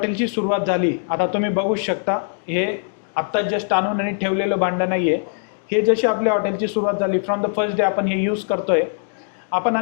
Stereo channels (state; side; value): silent; right; digital silence